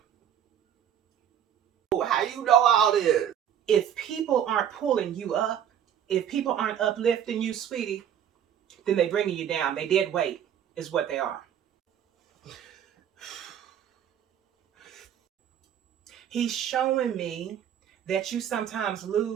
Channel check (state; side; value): quieter; left; 9.5 dB